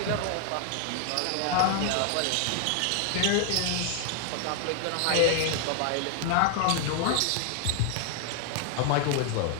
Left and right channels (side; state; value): both; different; correlation 0.00